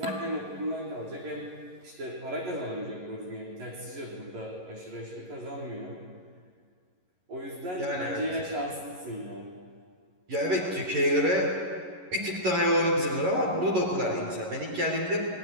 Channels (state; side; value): late; left; 11 ms